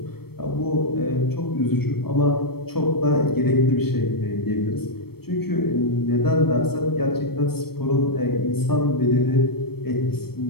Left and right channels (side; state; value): right; late; 0.96 ms